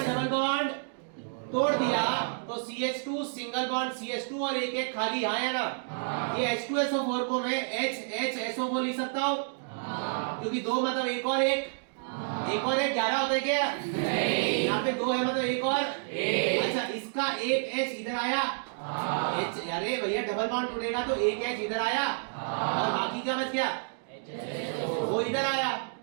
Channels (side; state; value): left; silent; digital silence